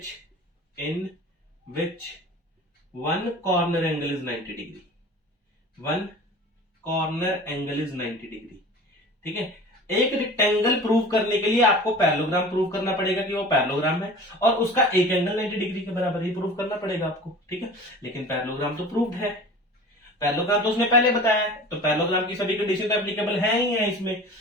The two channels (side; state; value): both; normal; correlation 0.40